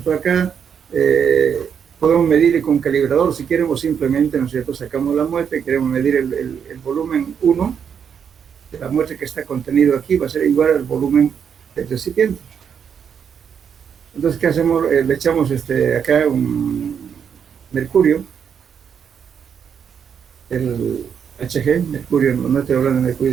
Acá podemos medir con calibrador si queremos, simplemente, ¿no es cierto? Sacamos la muestra y queremos medir el volumen 1 de la muestra que está contenido aquí, va a ser igual al volumen del recipiente. Entonces, ¿qué hacemos? Le echamos acá un mercurio, el Hg, mercurio, no estoy hablando de mercurio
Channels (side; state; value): left; quieter; 7.5 dB